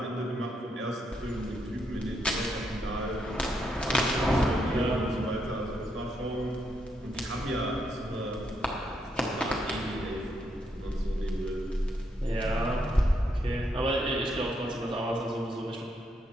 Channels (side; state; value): both; normal; correlation 0.78